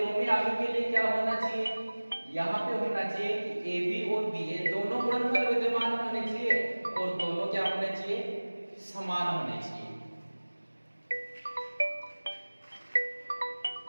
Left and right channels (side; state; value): both; inverted; correlation -1.00